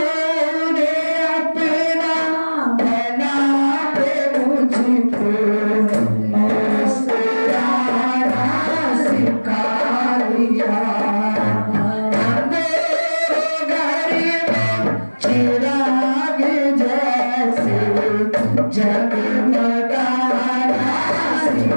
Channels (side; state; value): both; inverted; correlation -1.00